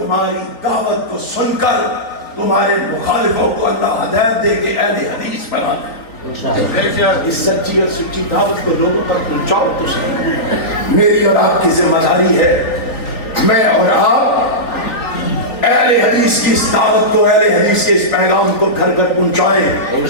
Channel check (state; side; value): late; right; 3.9 ms